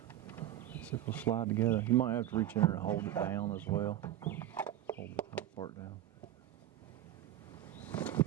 See if it'll slide together. You might have to reach in there and hold it down as well. Hold the top part down.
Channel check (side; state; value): left; quieter; 12.7 dB